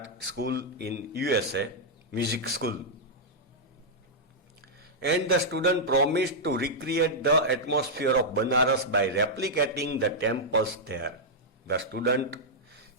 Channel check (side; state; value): both; normal; correlation -0.07